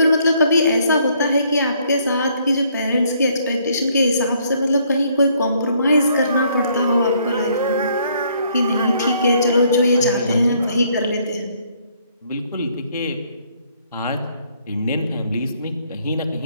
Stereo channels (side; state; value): both; inverted; correlation -0.67